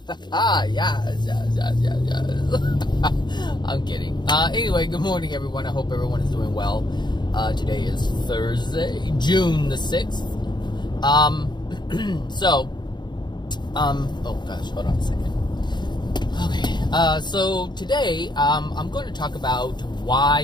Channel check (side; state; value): right; late; 0.21 ms